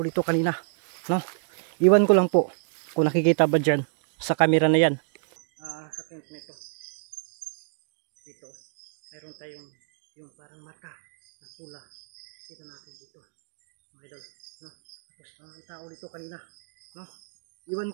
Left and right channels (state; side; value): silent; left; 59 dB below the other